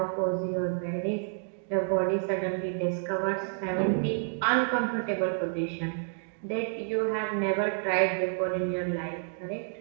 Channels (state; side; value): silent; left; digital silence